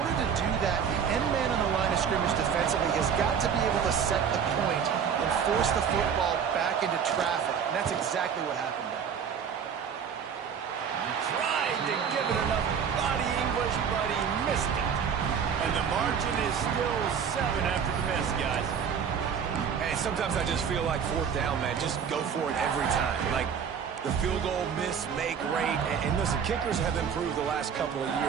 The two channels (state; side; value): quieter; left; 7.3 dB